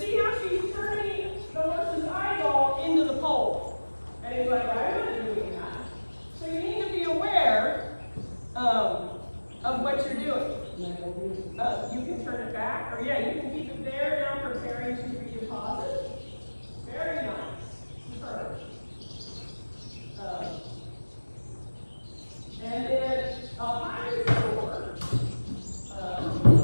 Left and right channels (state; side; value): inverted; both; correlation -1.00